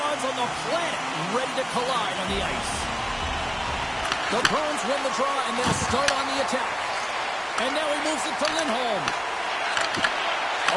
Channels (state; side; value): identical; both; correlation 1.00